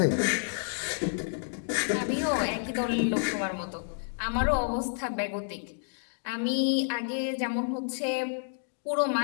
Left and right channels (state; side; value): silent; right; digital silence